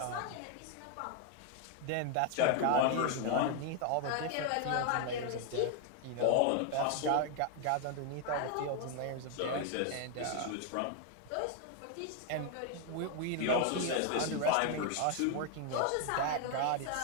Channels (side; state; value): both; different; correlation 0.00